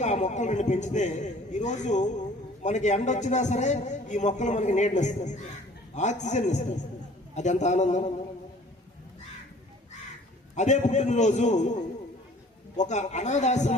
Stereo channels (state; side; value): normal; both; correlation 0.51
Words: ఆ మొక్కలు 2 పెంచితే, ఈరోజు మనకి ఎండ వచ్చినా సరే ఈ మొక్కలు మనకి నీడని ఇస్తాయి, ఆక్సిజన్ ఇస్తాయి. అది ఎంత ఆనందం. అదే పుట్టినరోజు ఒక